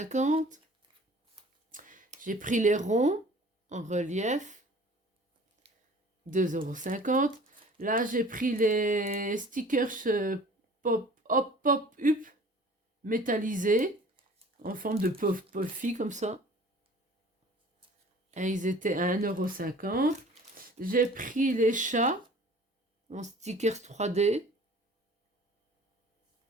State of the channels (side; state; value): both; normal; correlation 0.47